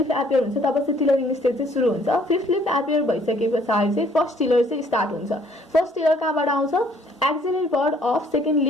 एपियर हुन्छ तब चाहिँ टिलरिङ स्टेज चाहिँ सुरु हुन्छ। 5th लिफ एपियर भइसके पछाडि चाहिँ फर्स्ट टिलर चाहिँ स्टार्ट हुन्छ। फर्स्ट टिलर कहाँबाट आउँछ, axillary bud of second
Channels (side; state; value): both; normal; correlation 0.61